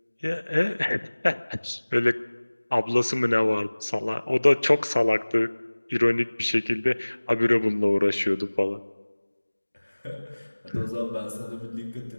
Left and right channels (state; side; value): inverted; both; correlation -1.00